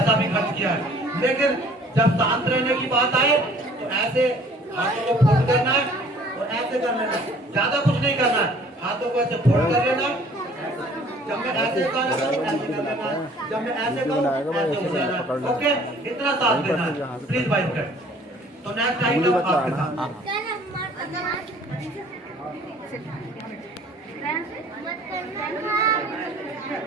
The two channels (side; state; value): both; normal; correlation 0.54